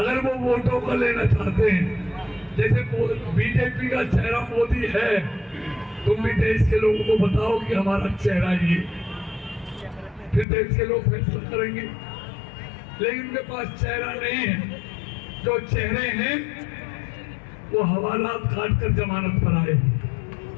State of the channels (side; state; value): right; drops out; at 10.5 s